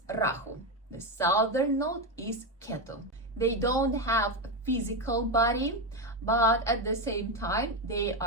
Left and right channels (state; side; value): normal; both; correlation 0.10